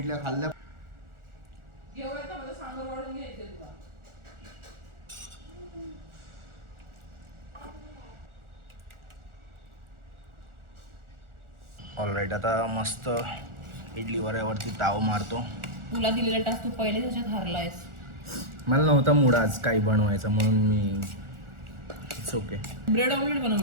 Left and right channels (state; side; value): late; left; 1.4 ms